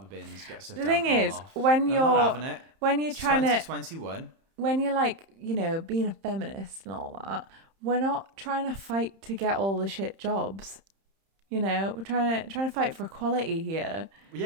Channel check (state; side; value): late; left; 31 ms